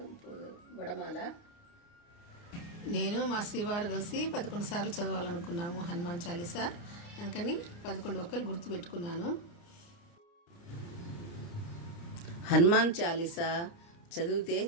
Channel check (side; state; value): right; late; 29 ms